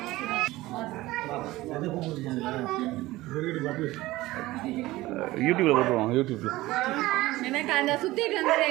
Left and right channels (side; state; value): left; quieter; 18.2 dB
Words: யூடியூப்ல போட்டுருவாங்க. யூடியூப்ல எனக்கு அந்த சுத்திட்டு